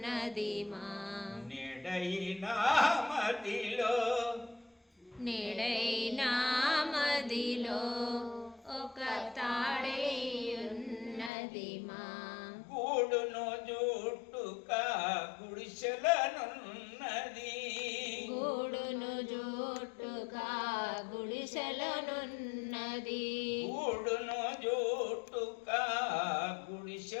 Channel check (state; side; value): drops out; right; at 11.3 s